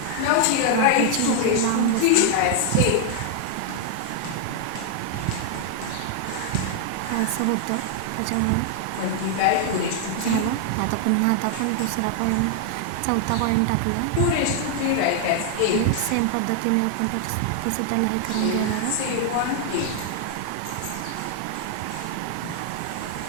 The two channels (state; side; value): different; both; correlation 0.00